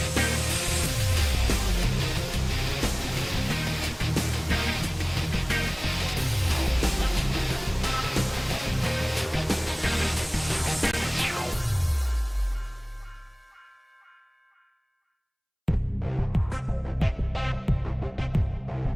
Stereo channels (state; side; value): identical; both; correlation 1.00